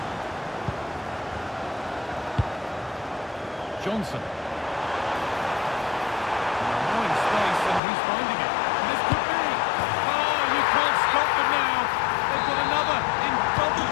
Johnson. Now in space and he's finding it. This could be. Oh, you can't stop them now. They've got another in double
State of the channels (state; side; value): drops out; right; at 7.8 s